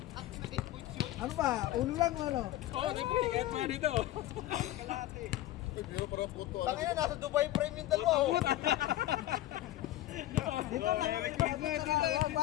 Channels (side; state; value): right; quieter; 14.9 dB